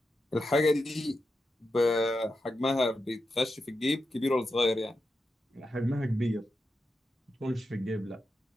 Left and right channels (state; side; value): normal; both; correlation 0.88